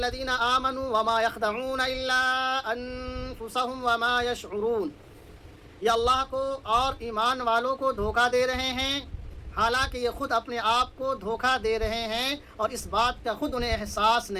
آمنوا وما یخدعون الا انفسهم وما یشعرون، یہ اللہ کو اور ایمان والوں کو دھوکہ دے رہے ہیں حالانکہ یہ خود اپنے آپ کو دھوکہ دے رہے ہیں اور اس بات کا خود انہیں احساس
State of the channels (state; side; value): identical; both; correlation 1.00